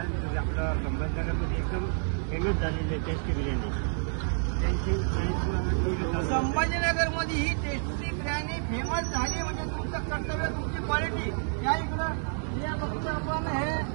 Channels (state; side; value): silent; left; 58 dB below the other